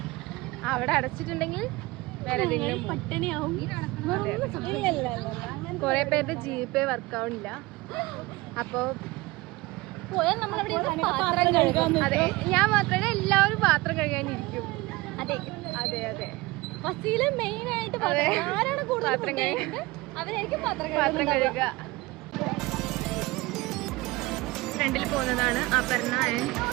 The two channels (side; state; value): left; quieter; 21.4 dB